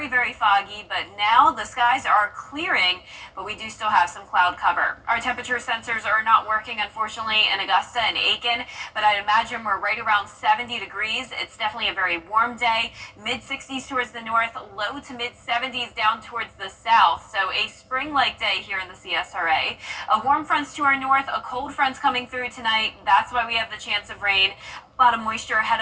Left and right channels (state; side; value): identical; both; correlation 1.00